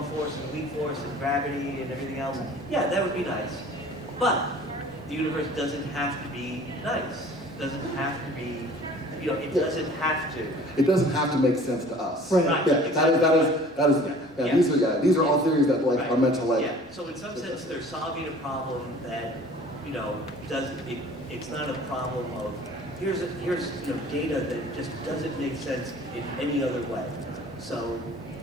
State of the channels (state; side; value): normal; both; correlation 0.48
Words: force and weak force and gravity and everything else. Yeah, that would be nice. But the universe doesn't have to be nice. It doesn't have to be, you know, it doesn't have to. It doesn't have to make sense to us. Right. Yeah, these are all theories that like are meant to like. Yeah. So in some sense, they're solving a problem that, you know, it's not a problem of here's you know, data that just doesn't make sense in any other way. So